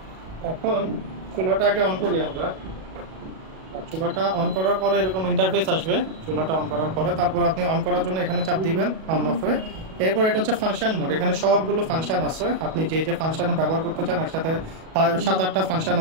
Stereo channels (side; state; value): left; late; 37 ms